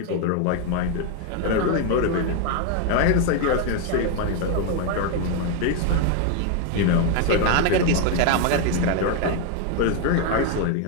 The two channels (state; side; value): different; both; correlation 0.01